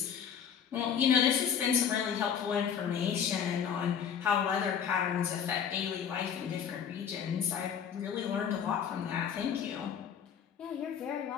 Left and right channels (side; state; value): right; quieter; 7.9 dB